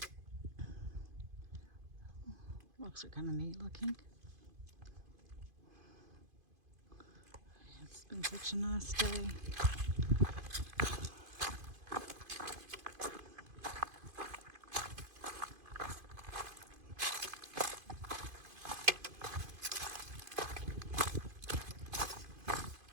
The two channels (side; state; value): left; late; 2.5 ms